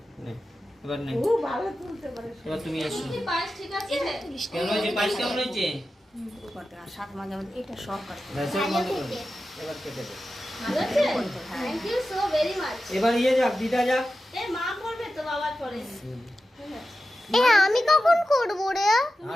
নে এবার নে ও ভালো তুলতে পারে এবার তুমি এসো কি পায়েস ঠিক আছে কেমন হয়েছে পায়েস কেমন হয়েছে করতে আর সাত মাঝে মাঝে এটা সব কাটতে ভেসে বন্ধ করো এবার কেটে দে ভালো আছে thank you so very much এবার ইয়ে যাক দিদা যাক এ মা করবে তো বাবার পরে এ আমি কখন করব রে?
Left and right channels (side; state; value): both; normal; correlation 0.92